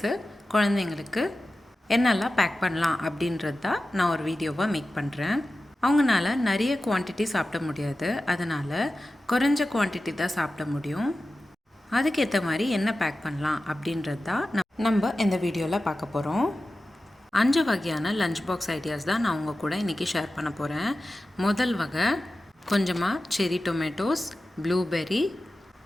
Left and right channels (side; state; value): both; normal; correlation 0.94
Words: குழந்தைங்களுக்கு என்னெல்லாம் பேக் பண்ணலாம் அப்படின்றது தான் நான் ஒரு வீடியோவாக மேக் பண்ணுறேன். அவங்களால நிறைய குவான்டிட்டி சாப்பிட முடியாது, அதனால் குறைஞ்ச குவான்டிட்டி தான் சாப்பிட முடியும். அதுக்கேற்ற மாதிரி என்ன பேக் பண்ணலாம் அப்படின்றது தான் நம்ம இந்த வீடியோவில் பார்க்க போகிறோம். 5 வகையான லஞ்ச் பாக்ஸ் ஐடியாஸ் தான் நான் உங்கள் கூட இன்றைக்கி ஷேர் பண்ண போகிறேன். முதல் வகை கொஞ்சமாக செரி டொமேட்டோஸ், ப்ளூபெர்ரி,